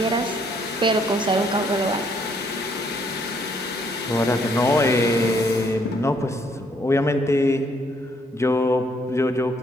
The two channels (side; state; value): both; normal; correlation 0.68